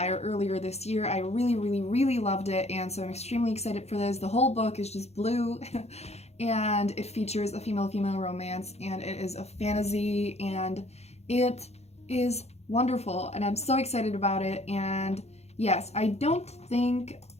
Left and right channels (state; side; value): late; right; 0.31 ms